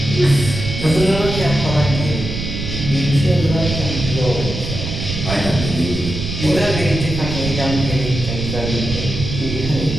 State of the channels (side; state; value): right; noise; rumble, 5 dB below the sound